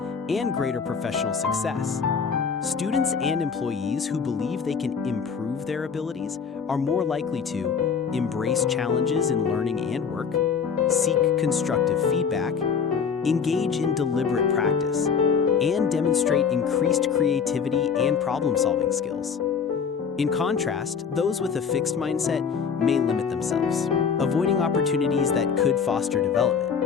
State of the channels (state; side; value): quieter; right; 6.4 dB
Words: and greater professional success. Students and employees who believe they can improve their abilities are more likely to embrace challenges in learning and work, seek constructive feedback, engage in deliberate practice, and demonstrate increased creativity and problem-solving skills. In contrast, those with a fixed mindset may limit themselves, avoiding opportunities that could foster